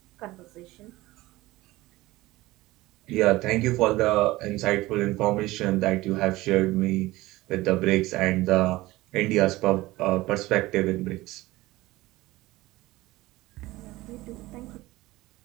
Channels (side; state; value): left; quieter; 18.8 dB